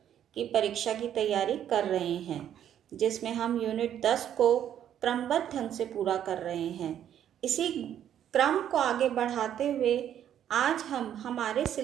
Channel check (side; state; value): left; quieter; 10.2 dB